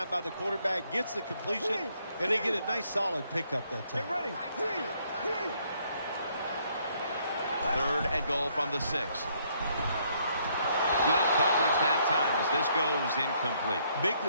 by the quarterback. Gets the completion, and they get a nice solid pickup that time. 3rd and goal from the 6. Good coverage that time as this goes incomplete. Big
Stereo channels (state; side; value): inverted; both; correlation -0.69